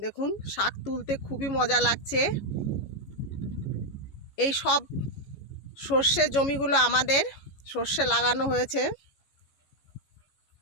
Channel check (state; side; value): late; right; 14 ms